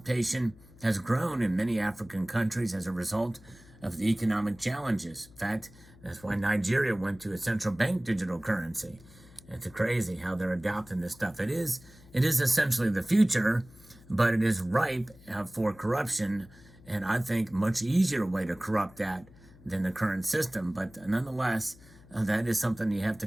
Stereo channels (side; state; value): left; noise; hum, 23 dB below the sound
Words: has grown in many African countries as a result of the economic challenges. In fact, that's why Nigeria went to a central bank digital currency. It's crazy how they're adopting this stuff. It is essentially the future, but it is ripe for corruption, and I think much easier way to corrupt that than the current system. But nonetheless, that is something you have to